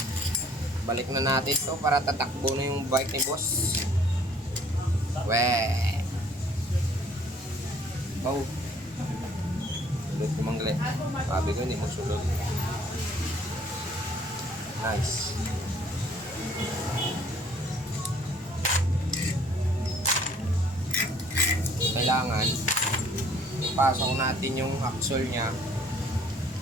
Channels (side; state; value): left; noise; rumble, 26 dB below the sound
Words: Balik na natin to para tatakbo na yung bike ni boss. Weh. Wow. Sulod ko mangle. Sabi ko hindi mo sulod. Nice. Kailangan ipasok natin yung axle nya